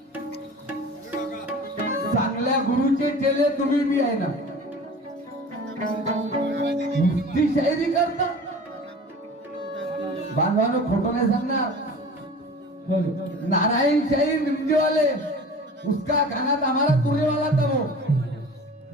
चांगल्या गुरुचे चेले तुम्ही बी आहे ना. नुसती शायरी करता बांधवानो, खोटं नाही सांगणार. नारायण शाहीर निमजेवाले उसका गाना था हमारा तुरे वाला था वो.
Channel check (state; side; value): normal; both; correlation 0.40